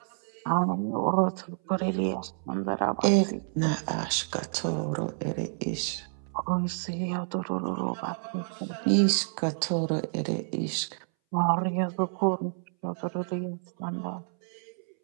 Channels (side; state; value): left; silent; 58 dB below the other